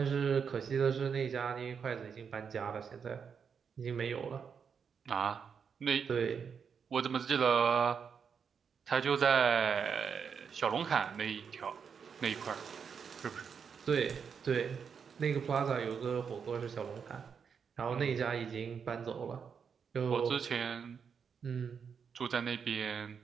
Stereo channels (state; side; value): quieter; left; 6.6 dB